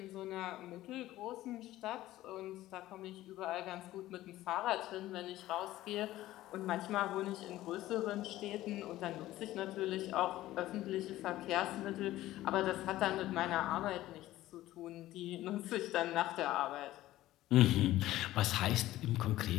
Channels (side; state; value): right; quieter; 15.4 dB